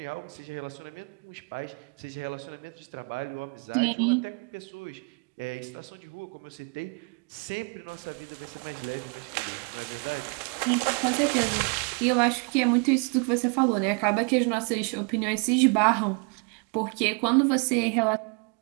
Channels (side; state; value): left; quieter; 35.2 dB